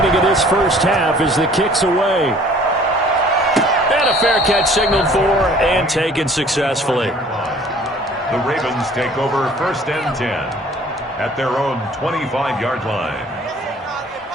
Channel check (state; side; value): normal; both; correlation 0.53